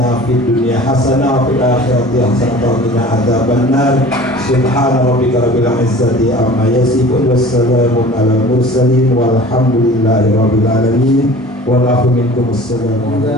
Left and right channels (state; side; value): normal; both; correlation 0.43